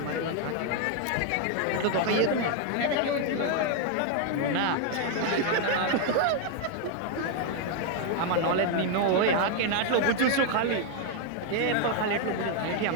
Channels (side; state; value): both; different; correlation 0.00